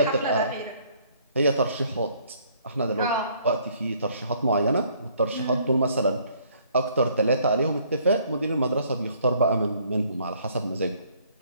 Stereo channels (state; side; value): inverted; both; correlation -0.62